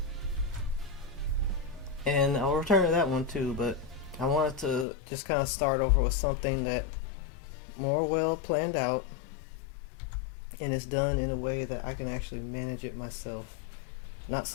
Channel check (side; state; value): right; drops out; at 4.9 s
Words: And I'll return to that one too, but I wanted to just kind of start over with something that more well planned out and is done in a way that I can actually manage it myself. Not